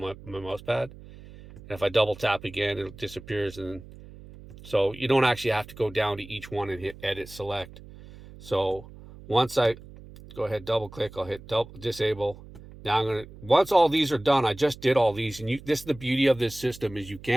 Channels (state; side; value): noise; right; hum, 18 dB below the sound